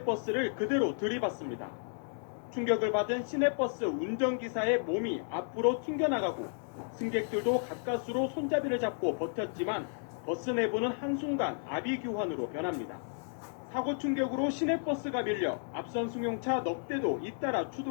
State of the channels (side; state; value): right; silent; 56 dB below the other